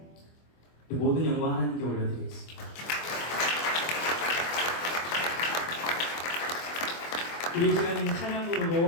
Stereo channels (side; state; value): right; late; 24 ms